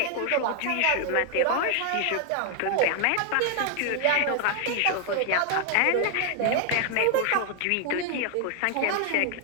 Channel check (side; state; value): both; different; correlation 0.00